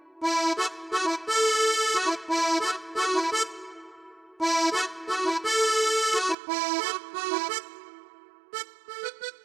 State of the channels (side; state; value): left; drops out; at 6.4 s